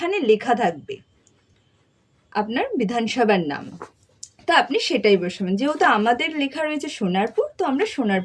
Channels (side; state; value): both; identical; correlation 1.00